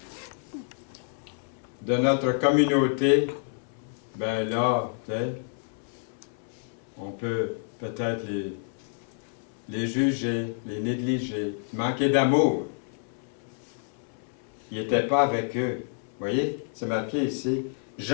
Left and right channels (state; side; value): silent; right; 59 dB below the other